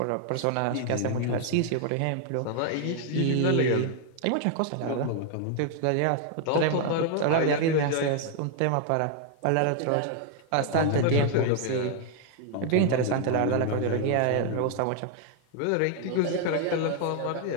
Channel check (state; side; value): different; both; correlation 0.00